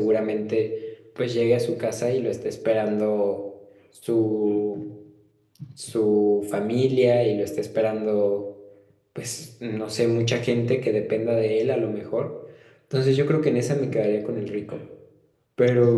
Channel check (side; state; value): both; identical; correlation 1.00